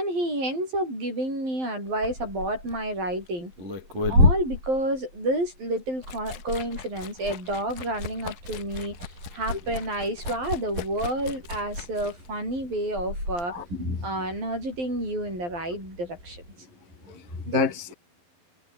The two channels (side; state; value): left; late; 12 ms